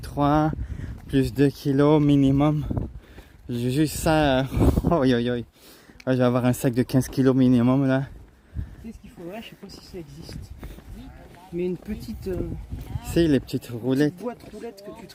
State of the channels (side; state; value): both; identical; correlation 1.00